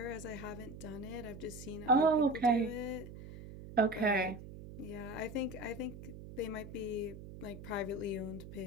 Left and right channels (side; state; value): right; noise; hum, 13 dB below the sound